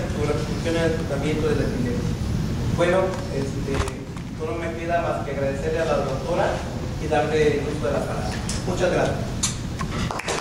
su repercusión en el tratamiento de la epilepsia. Bueno, solo me queda más que agradecerle a la doctora y darle el uso de la palabra. Muchas gracias.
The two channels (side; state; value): both; identical; correlation 1.00